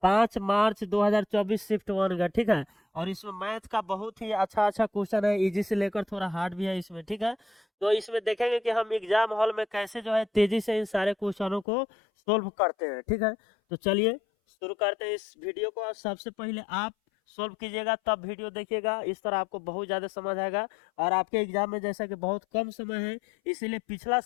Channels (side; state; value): right; drops out; at 11.7 s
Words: 5 मार्च 2024 शिफ्ट 1 का, ठीक है। और इसमें मैथ का बहुत ही अच्छा अच्छा क्वेश्चन है, इजी से लेकर थोड़ा हार्ड भी है इसमें, ठीक है। तो इसमें देखेंगे कि हम एग्जाम हॉल में कैसे जो है तेजी से इन सारे क्वेश्चनों को सोल्व करते हैं, ठीक है। तो चलिए शुरू करते हैं इस वीडियो को। और सबसे पहले आप सोल्व कीजिएगा तब वीडियो देखिएगा, इस तरह आपको बहुत ज़्यादा समझ आएगा। और आपके एग्जाम में जैसा कि बहुत कम समय है, इसीलिए पिछला